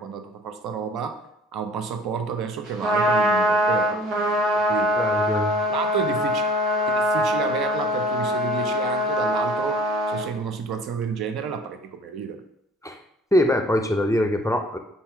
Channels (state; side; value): normal; both; correlation 0.50